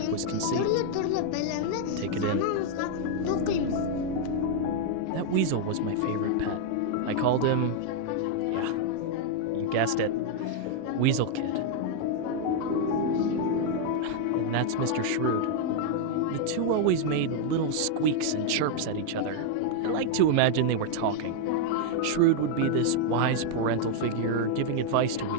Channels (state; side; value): different; both; correlation 0.00